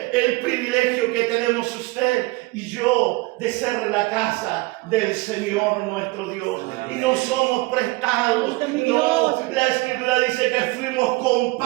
el privilegio que tenemos usted y yo de ser la casa del Señor nuestro Dios. Y no somos prestados, no. La Escritura dice que fuimos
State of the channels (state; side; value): quieter; left; 22.8 dB